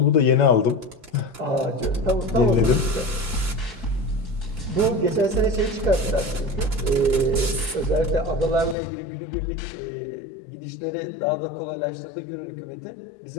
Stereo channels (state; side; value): drops out; right; at 8.8 s